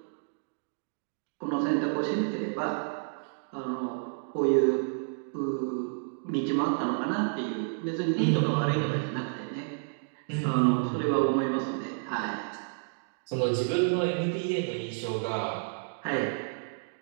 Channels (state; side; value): silent; left; digital silence